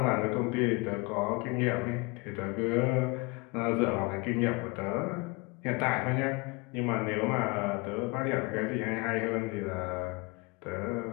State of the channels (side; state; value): right; quieter; 27.2 dB